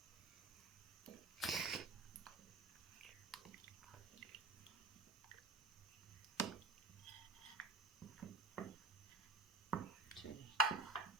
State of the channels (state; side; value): quieter; left; 3.3 dB